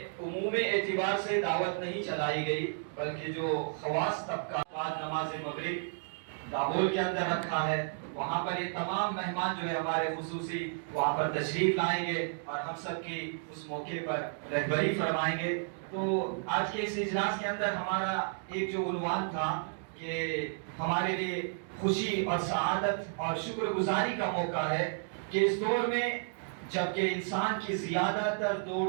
عمومی اعتبار سے دعوت نہیں چلائی گئی، بلکہ جو خواص طبقہ بعد نماز مغرب دابول کے اندر رکھا ہے وہاں پر یہ تمام مہمان جو ہے ہمارے خصوصی وہاں پر تشریف لائیں گے اور ہم سب کی اس موقع پر رہبری فرمائیں گے. تو آج کے اس اجلاس کے اندر ہمارا ایک جو عنوان تھا کہ ہمارے لیے خوشی اور سعادت اور شکر گزاری کا موقع ہے کہ اس دور میں جبکہ انسان کی زیادہ تر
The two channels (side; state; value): left; silent; digital silence